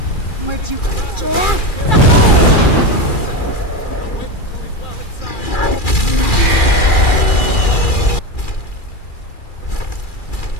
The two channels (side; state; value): right; late; 2.4 ms